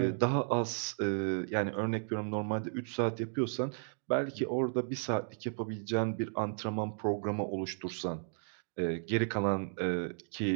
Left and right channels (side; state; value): left; silent; digital silence